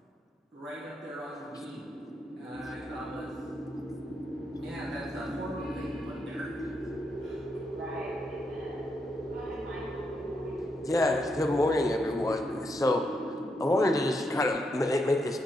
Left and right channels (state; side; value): normal; both; correlation 0.80